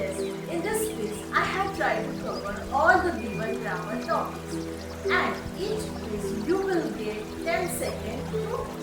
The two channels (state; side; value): identical; both; correlation 1.00